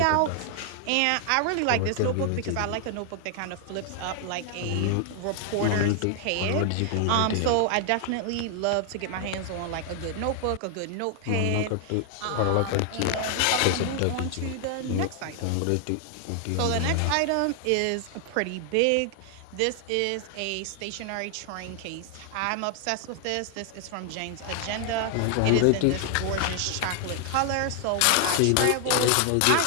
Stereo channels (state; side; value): different; both; correlation 0.00